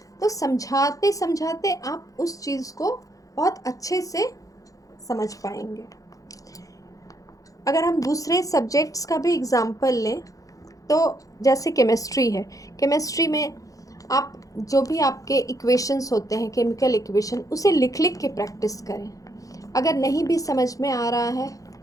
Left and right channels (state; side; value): late; right; 0.17 ms